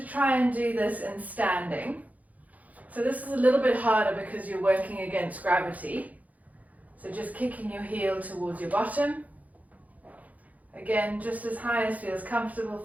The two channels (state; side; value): late; left; 0.076 ms